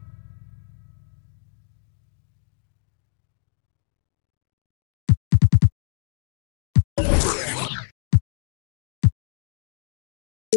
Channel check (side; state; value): right; silent; 61 dB below the other